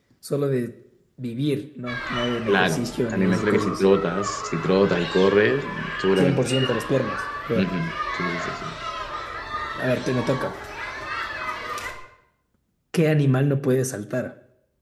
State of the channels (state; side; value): identical; both; correlation 1.00